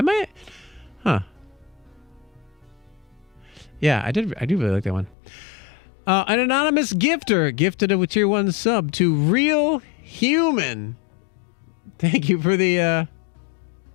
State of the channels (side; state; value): right; drops out; at 5.2 s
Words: Huh. Yeah, I do really like that one. An anonymous gifter gifted a tier 1 sub to Real Human. Thank you for the